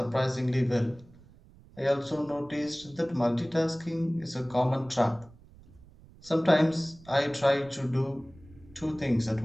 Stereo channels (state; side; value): noise; right; rumble, 23 dB below the sound